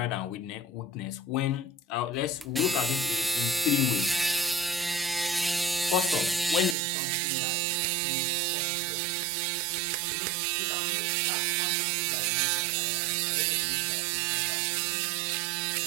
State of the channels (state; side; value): drops out; left; at 6.8 s